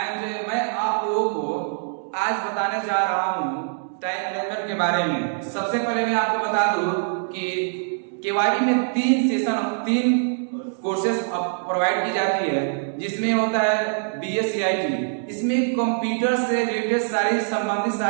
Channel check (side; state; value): left; silent; digital silence